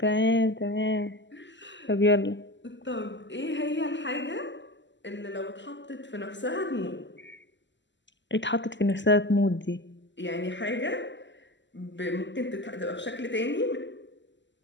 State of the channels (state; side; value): late; right; 0.53 ms